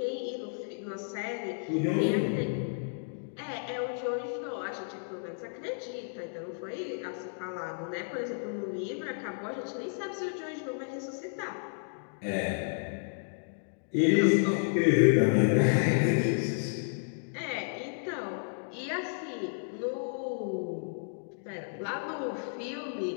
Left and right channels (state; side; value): silent; right; digital silence